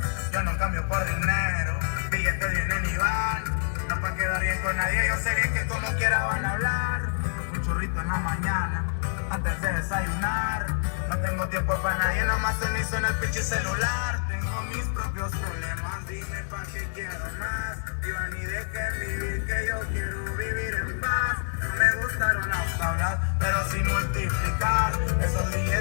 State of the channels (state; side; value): silent; right; digital silence